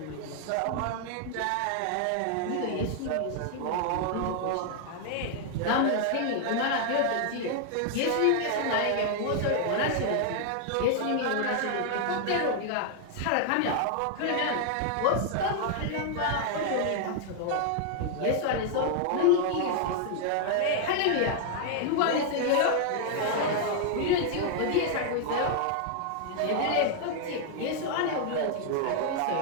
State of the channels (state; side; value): different; both; correlation 0.00